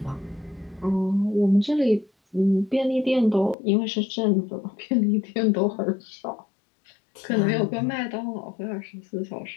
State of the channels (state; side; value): drops out; right; at 3.6 s